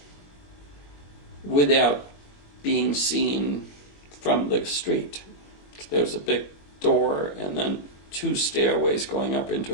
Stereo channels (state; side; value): late; right; 21 ms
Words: without being seen from the street. There was a big door and then 2 stairways going up into